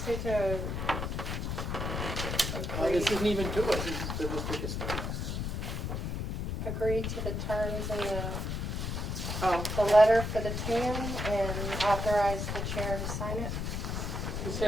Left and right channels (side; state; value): left; noise; rumble, 2 dB below the sound